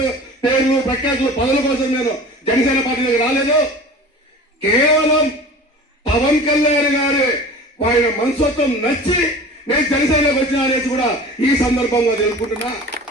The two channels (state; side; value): normal; both; correlation 0.39